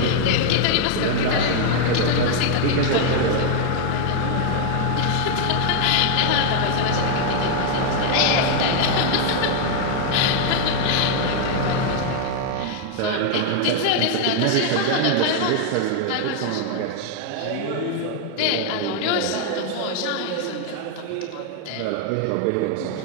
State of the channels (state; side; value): different; both; correlation 0.00